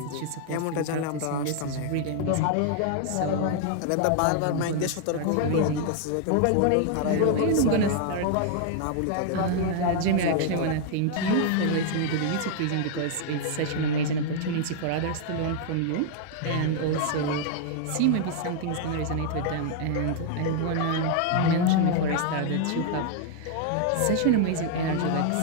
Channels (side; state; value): both; different; correlation 0.00